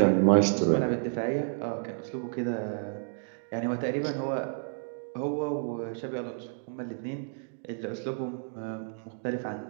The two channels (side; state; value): left; silent; digital silence